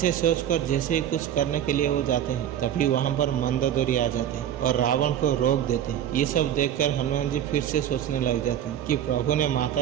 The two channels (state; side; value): quieter; left; 10.4 dB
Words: सोचकर जैसे ही कुछ करने के लिए वो जाते हैं, तभी वहाँ पर मंदोदरी आ जाते हैं और रावण को रोक देते हैं। ये सब देखकर हनुमान जी फिर से सोचने लग जाते हैं कि प्रभु ने